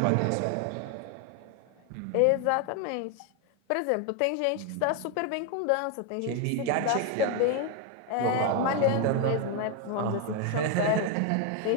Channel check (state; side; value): different; both; correlation 0.01